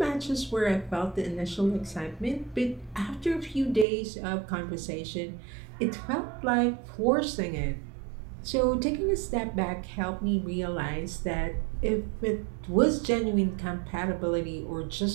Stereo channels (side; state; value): left; drops out; at 3.9 s